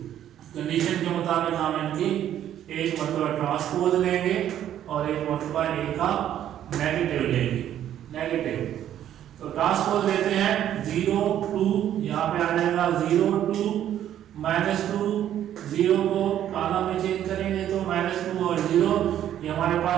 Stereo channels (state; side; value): quieter; left; 11.0 dB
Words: Condition के मुताबिक हम इनकी एक मरतबा ट्रांसपोज लेंगे और एक मरतबा ए का नेगेटिव लेंगे, नेगेटिव। तो ट्रांसपोज लेते हैं 0 2, यहाँ पे आ जाएगा 0 2 -2, 0 को कॉलम में चेंज करेंगे तो -2 और 0, ये हमारे